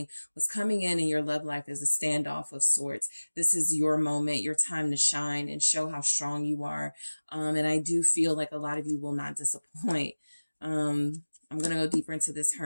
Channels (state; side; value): inverted; both; correlation -1.00